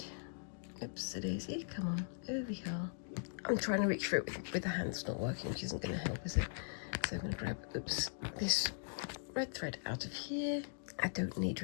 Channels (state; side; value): silent; right; digital silence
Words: Oops, a daisy, come on, over here. I'm trying to reach for it with the hand, it's not working, which isn't going to help, is it? So I'm going to grab, this red thread out of here. I don't need